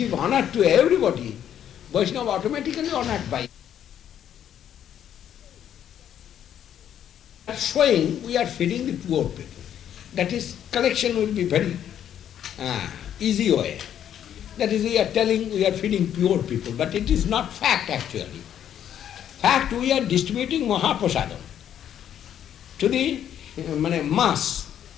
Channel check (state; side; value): quieter; right; 10.0 dB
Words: honor to everybody, Vaishnava automatically honored by you. Showing we are feeding the poor people. That is, collection will be very easy way. That is, we are telling we are feeding poor people, but it is not fact actually. Fact, we are distributing Mahaprasadam to the mass.